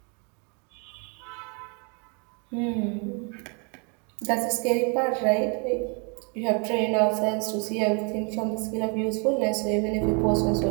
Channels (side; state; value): left; quieter; 35.0 dB